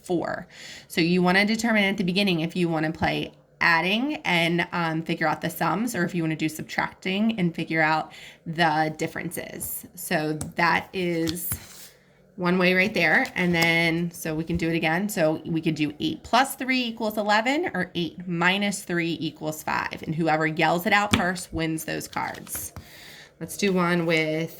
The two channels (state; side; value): identical; both; correlation 1.00